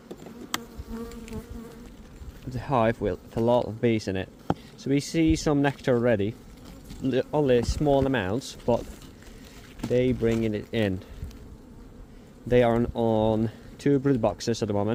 the hive with a lot of bees in it. So we see some nectar already, only small amounts, but they bring it in. They are on 2 brood boxes at the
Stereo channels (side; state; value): both; identical; correlation 1.00